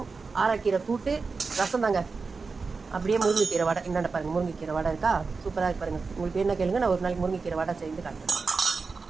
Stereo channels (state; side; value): quieter; left; 4.5 dB